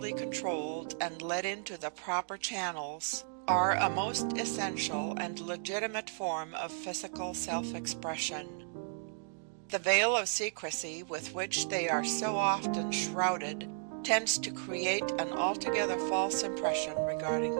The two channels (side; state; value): left; silent; digital silence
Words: controlled and led into the proper channels, are a most essential and legitimate form of physical self-expression. The veil of secrecy with which they are so often shrouded tends to create an altogether false impression regarding